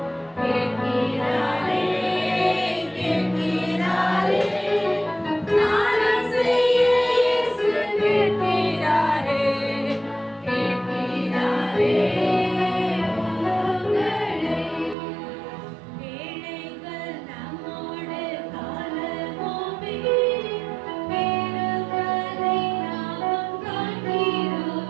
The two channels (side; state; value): left; drops out; at 15.0 s